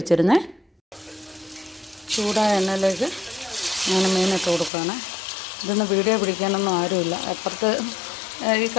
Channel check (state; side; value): drops out; right; at 4.7 s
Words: വെച്ചിരുന്നേ. ചൂടായ എണ്ണയിലേക്ക് അങ്ങനെ മീനിട്ട് കൊടുക്കുകയാണ്. ഇതൊന്നും വീഡിയോ പിടിക്കാനൊന്നും ആരുമില്ല. അപ്പുറത്ത് ഈ